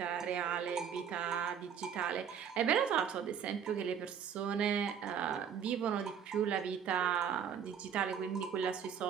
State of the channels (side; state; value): left; quieter; 8.0 dB